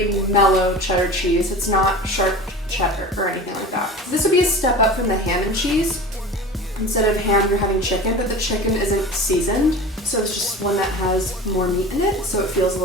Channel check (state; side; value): normal; both; correlation 0.35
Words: mellow cheddar cheese. It's not sharp cheddar or anything like that. This would be a step up from the ham and cheese. Instead of ham, you're having chicken, but the chicken isn't seasoned. So it's just one that has more meat in it, so it feels a